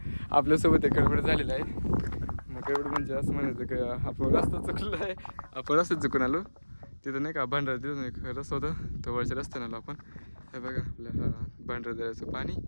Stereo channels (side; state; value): both; inverted; correlation -1.00